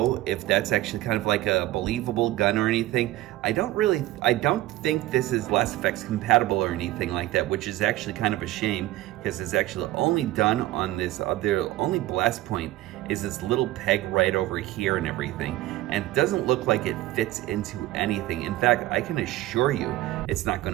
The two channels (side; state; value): left; quieter; 16.2 dB